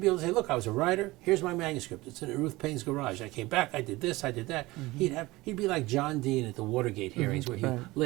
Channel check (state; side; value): quieter; left; 20.2 dB